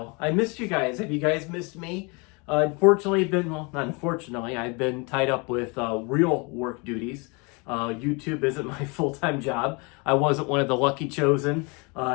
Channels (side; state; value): right; quieter; 30.1 dB